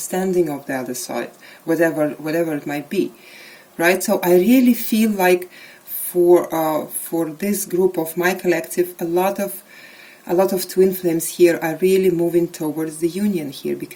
of the other side, whatever it might be, right? So I really feel like for this group of my collective, a lot of twin flames here are really moving towards the union here,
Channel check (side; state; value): both; identical; correlation 1.00